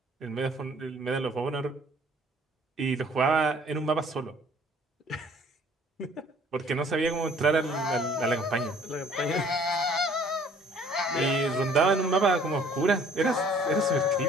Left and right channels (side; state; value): both; normal; correlation 0.56